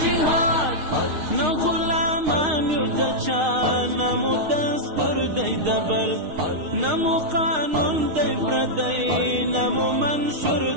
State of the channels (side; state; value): left; late; 6.4 ms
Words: نه غلامان یو د چا نه مو دستور دی د بل نه مو قانون دی پردی نه مو منشور